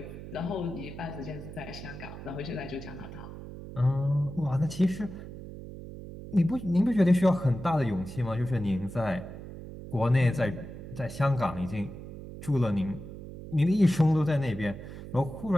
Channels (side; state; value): right; noise; hum, 12 dB below the sound